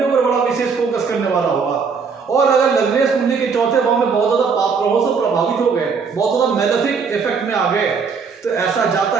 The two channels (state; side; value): quieter; left; 5.5 dB